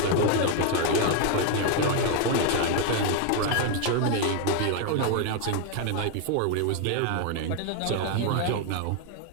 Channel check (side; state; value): both; different; correlation 0.01